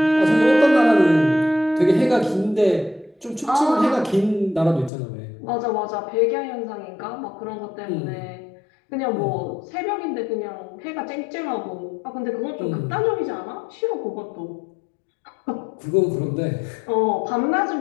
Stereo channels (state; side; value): drops out; right; at 4.9 s